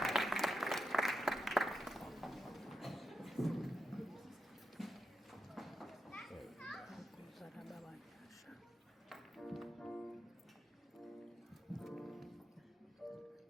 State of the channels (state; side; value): normal; both; correlation 0.86